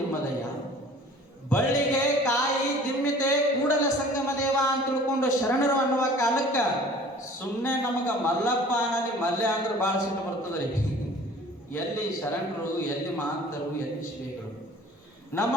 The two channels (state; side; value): normal; both; correlation 0.48